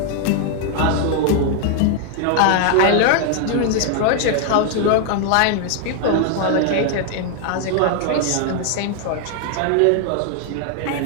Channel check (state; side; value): different; both; correlation 0.00